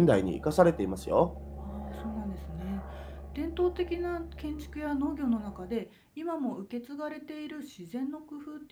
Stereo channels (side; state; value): both; identical; correlation 1.00